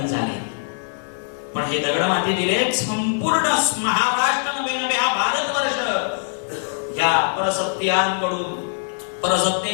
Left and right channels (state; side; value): silent; right; 64 dB below the other